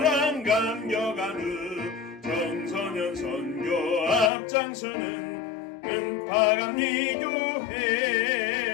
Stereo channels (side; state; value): right; drops out; at 4.3 s